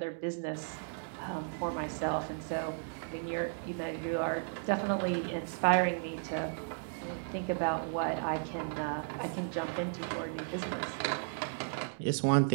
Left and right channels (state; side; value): silent; left; digital silence